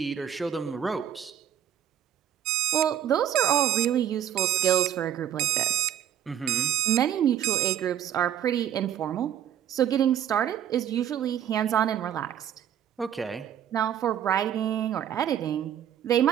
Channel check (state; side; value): quieter; left; 10.4 dB